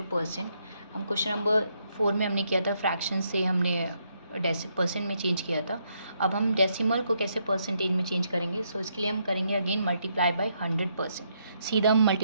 percent. हम क्वेश्चन नंबर 4 में हमने किया था फ्रैक्शन से हमने परसेंट में चेंज किया था। अब हम डेसिमल को कैसे परसेंटेज में चेंज करेंगे, सो इसके लिए हम करेंगे अगेन मल्टीप्लाई बाय 100%। सीधा हम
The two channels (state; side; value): inverted; both; correlation -0.76